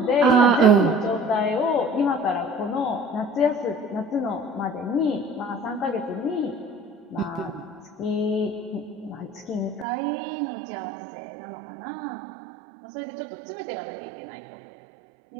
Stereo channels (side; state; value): left; drops out; at 9.9 s